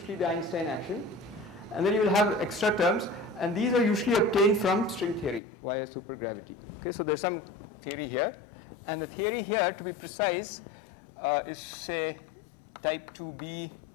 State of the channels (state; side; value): drops out; right; at 5.4 s